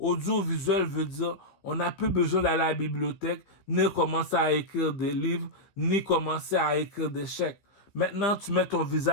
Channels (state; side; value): late; right; 15 ms